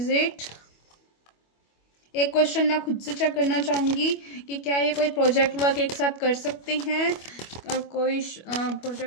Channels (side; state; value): right; late; 25 ms